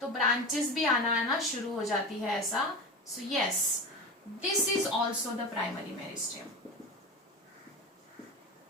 तो ब्रांचेस भी आना शुरू हो जाती है ऐसा। So yes, this is also the primary meristem,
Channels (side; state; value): both; normal; correlation 0.26